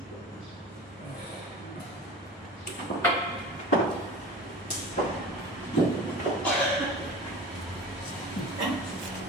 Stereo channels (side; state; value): both; normal; correlation 0.36